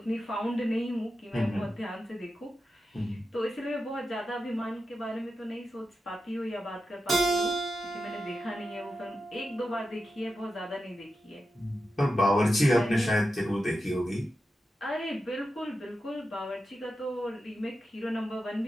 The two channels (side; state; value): both; normal; correlation 0.90